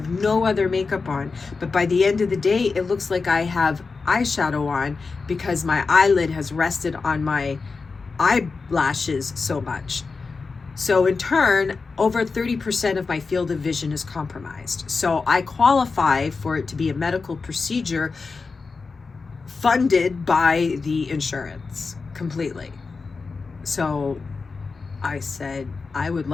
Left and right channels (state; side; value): quieter; right; 4.4 dB